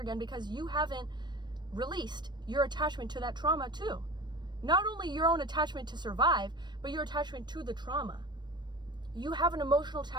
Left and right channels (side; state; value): left; late; 0.22 ms